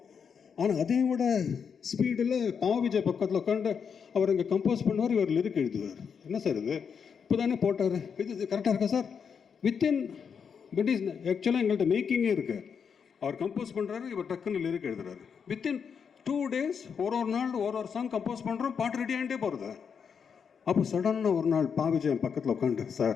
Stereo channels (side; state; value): right; quieter; 6.7 dB